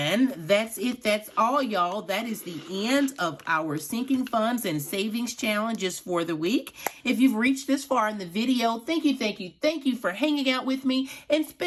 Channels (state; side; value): identical; both; correlation 1.00